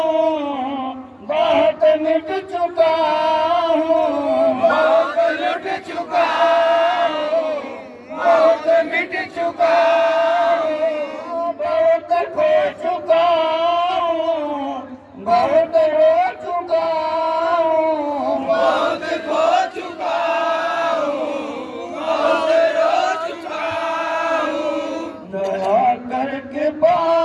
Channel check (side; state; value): both; identical; correlation 1.00